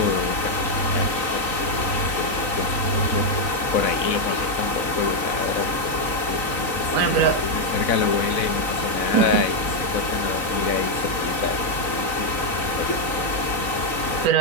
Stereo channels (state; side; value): late; right; 3.9 ms